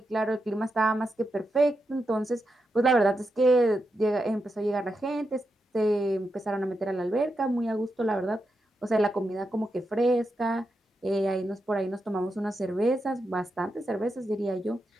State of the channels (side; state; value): both; normal; correlation 0.86